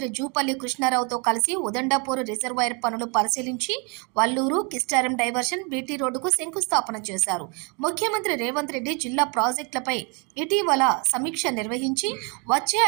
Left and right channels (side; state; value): left; quieter; 32.9 dB